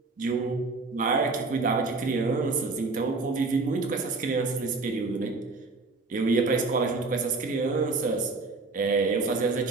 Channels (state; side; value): quieter; left; 3.7 dB